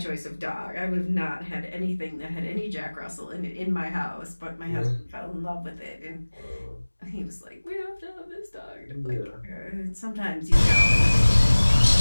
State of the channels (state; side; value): inverted; both; correlation -1.00